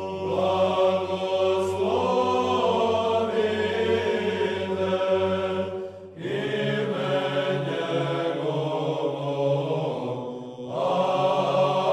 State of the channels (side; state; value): both; identical; correlation 1.00